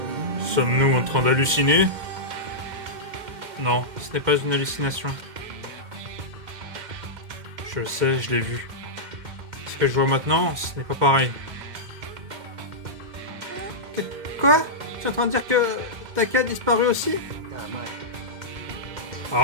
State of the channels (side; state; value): left; late; 2.1 ms